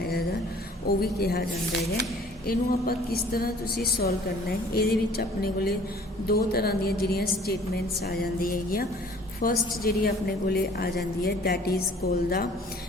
वो भी कहा जाता है। इनू आप किस तरह तुसी सॉल्व करना है, ये अपने को दो तरह दी जिहड़ियां स्टेटमेंट्स आ जाती है। फर्स्ट जी अपने को आ जाती है that is call the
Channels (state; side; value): normal; both; correlation 0.52